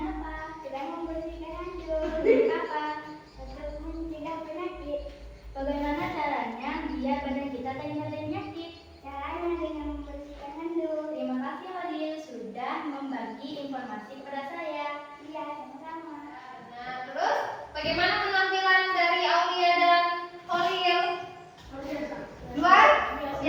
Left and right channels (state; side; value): identical; both; correlation 1.00